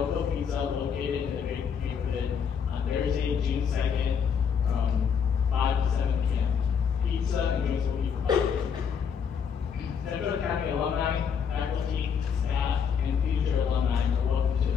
Pizza, located in the Great neighborhood on Thursday, June 2nd, from 5 to 7 p.m. Pizza and drinks will be provided. Central Academy alumni, faculty, staff, and future alumni are welcome to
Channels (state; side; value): quieter; right; 7.0 dB